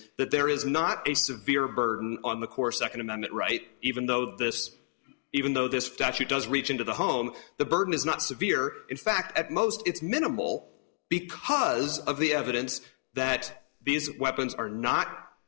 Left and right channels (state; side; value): silent; right; digital silence